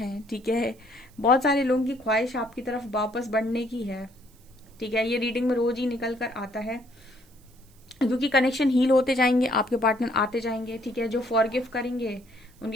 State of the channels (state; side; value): noise; right; hiss, 29 dB below the sound